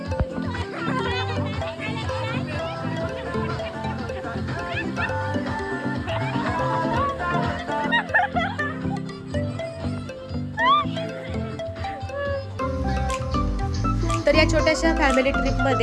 तर या छोट्याशा फॅमिली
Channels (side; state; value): both; identical; correlation 1.00